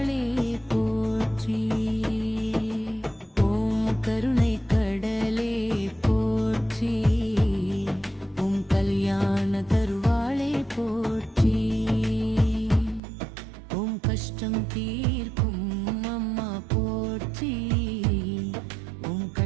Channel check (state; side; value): drops out; left; at 13.0 s